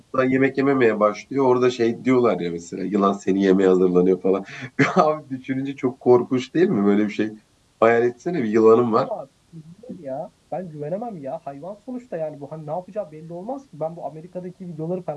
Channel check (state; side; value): identical; both; correlation 1.00